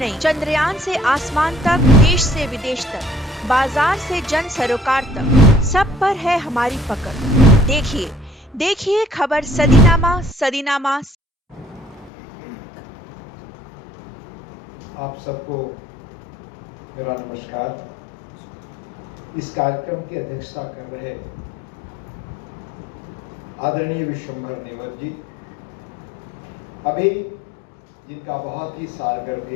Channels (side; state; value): right; drops out; at 12.1 s